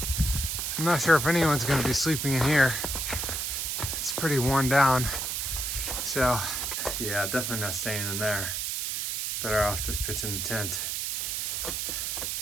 I'm not sure if anyone's gonna be sleeping in here. It's pretty worn down. So yeah, definitely not staying in there. Better off just pitching the tent.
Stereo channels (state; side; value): noise; right; hiss, 1 dB below the sound